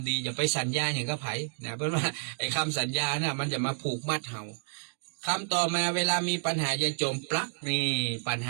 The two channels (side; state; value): left; silent; digital silence